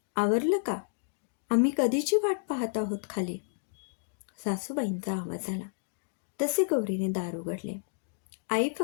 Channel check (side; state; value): right; silent; digital silence